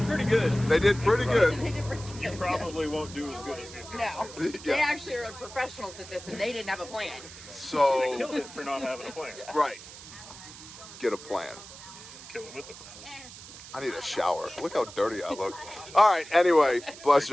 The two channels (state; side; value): noise; right; hiss, 15 dB below the sound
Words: pretty good. They did pretty good. You probably won't do as good as these guys. No. Yeah. They actually are professionals at this, and they didn't have a plan. So They killed it for not having a plan. right. Get a plan. Kill it with a plan. I need a shower. Look how dirty I look. All right, anyway, bless